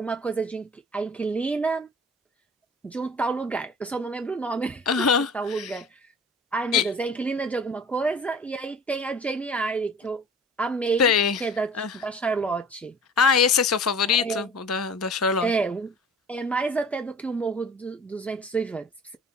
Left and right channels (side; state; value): both; normal; correlation 0.44